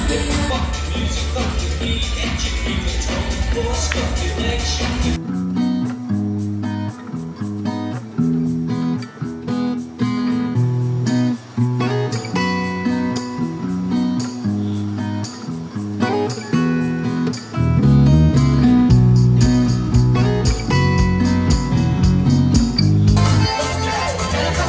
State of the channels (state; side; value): identical; both; correlation 1.00